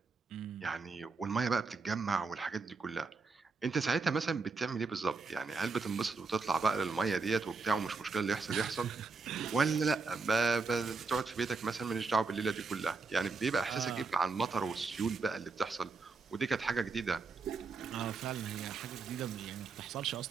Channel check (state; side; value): quieter; left; 4.4 dB